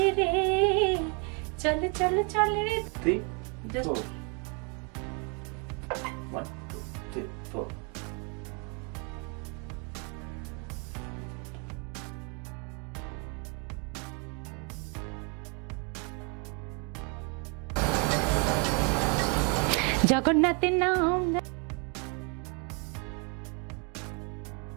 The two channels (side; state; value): left; quieter; 35.0 dB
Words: চল চল চল রে। 3, 4. 1, 2, 3, 4. জগন্নাথের নাম